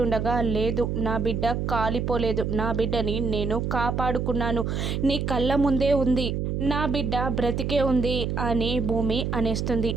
లేదు నా బిడ్డ కాలిపోలేదు, నా బిడ్డని నేను కాపాడుకున్నాను, నీ కళ్ళ ముందే ఉంది, నా బిడ్డ బ్రతికే ఉంది అని భూమి అనేస్తుంది.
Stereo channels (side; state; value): right; noise; hum, 1 dB below the sound